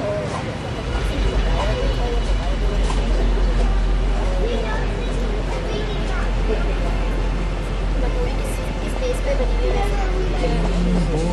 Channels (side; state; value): both; identical; correlation 1.00